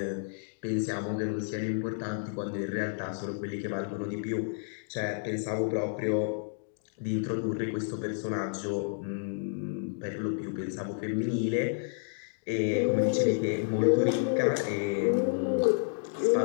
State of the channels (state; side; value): silent; right; digital silence